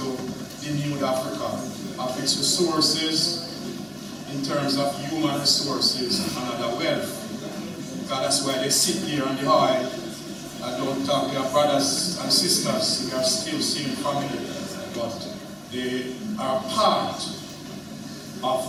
denude Africa of its resources in terms of human resources and other wealth. Because that's why they sit there on the oil and don't talk. They are brothers and sisters. They are still same family, but they are part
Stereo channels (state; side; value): identical; both; correlation 1.00